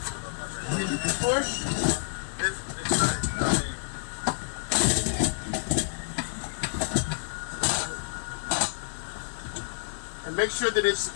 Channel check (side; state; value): right; silent; digital silence